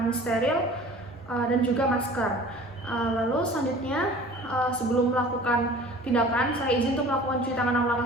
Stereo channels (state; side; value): normal; both; correlation 0.45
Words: steril, dan juga masker. Lalu selanjutnya sebelum melakukan tindakan, saya izin untuk melakukan cuci tangan 6